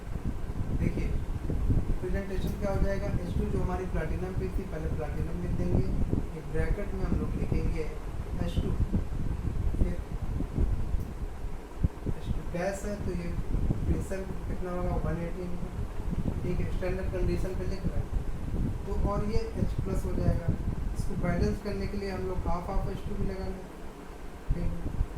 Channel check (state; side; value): identical; both; correlation 1.00